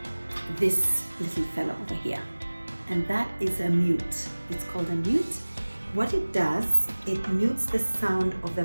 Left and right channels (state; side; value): inverted; both; correlation -1.00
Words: this little fella over here, and that is a mute. It's called a mute. What it does, it mutes the sound of the